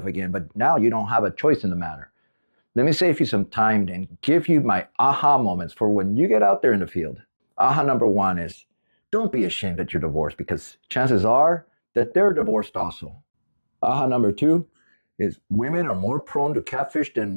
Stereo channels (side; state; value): both; inverted; correlation -1.00